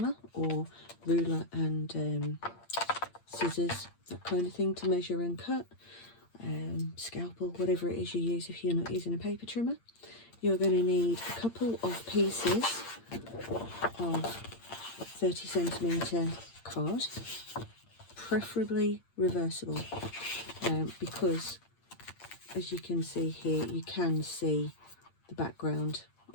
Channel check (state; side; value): late; right; 8.7 ms